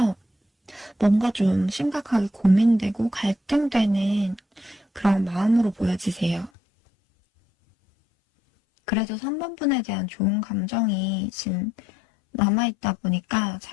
뭔가 좀 심각하게 고민되고 갈등되는 그런 마음으로 보여지세요. 그래도 3번분에 대한 좋은 감정이 지금 남아있다 보니까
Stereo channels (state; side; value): drops out; right; at 6.5 s